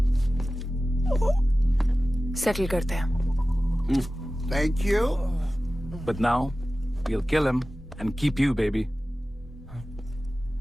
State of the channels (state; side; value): normal; both; correlation 0.96